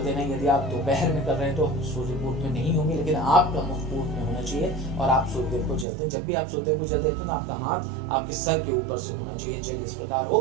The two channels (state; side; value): drops out; left; at 5.9 s